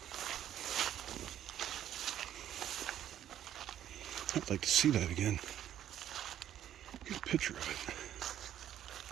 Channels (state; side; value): quieter; left; 11.0 dB